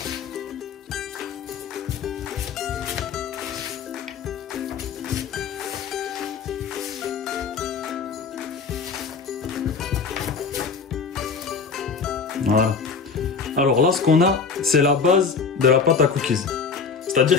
Voilà. Alors là, ce qu'on a, c'est la base de la pâte à cookies.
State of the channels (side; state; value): right; quieter; 5.5 dB